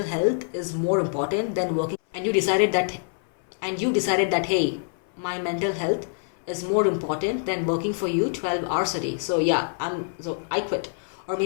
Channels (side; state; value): right; silent; 60 dB below the other